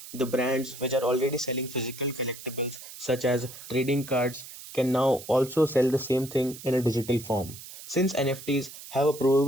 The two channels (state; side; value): noise; right; hiss, 14 dB below the sound